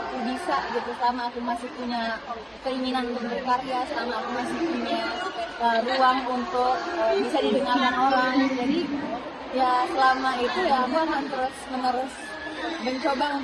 bisa gitu, selama aku masih punya keinginan untuk berkarya, selama aku masih punya ruang untuk bisa didengarkan orang, jadi ya selama itu ya aku akan terus menerus mencoba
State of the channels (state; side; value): identical; both; correlation 1.00